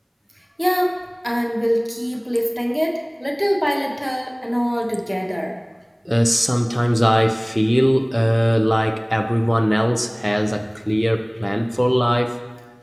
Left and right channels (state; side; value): identical; both; correlation 1.00